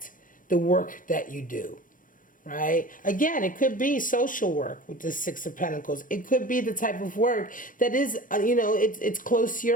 the work that you do, right? Again, it could be social work with the Six of Pentacles. It could be the type of work that is, it's close to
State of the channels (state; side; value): late; right; 0.39 ms